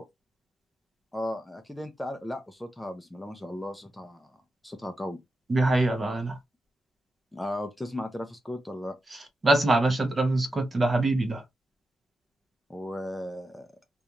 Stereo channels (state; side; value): normal; both; correlation 0.89